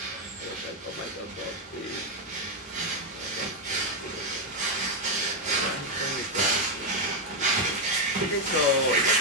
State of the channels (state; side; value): normal; both; correlation 0.03